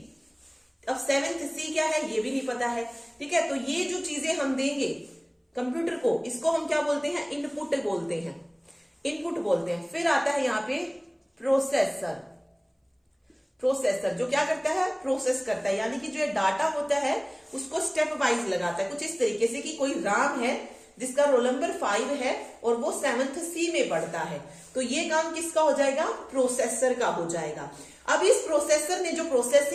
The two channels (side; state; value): both; identical; correlation 1.00